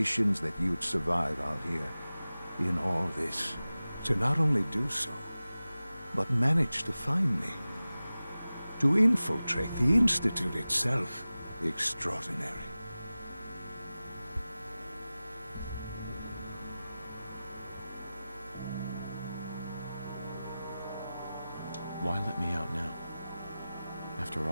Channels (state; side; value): inverted; both; correlation -0.96